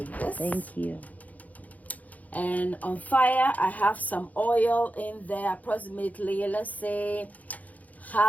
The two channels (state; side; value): late; right; 0.076 ms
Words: this. Thank you. And on fire I have some oil in there, approximately, let's say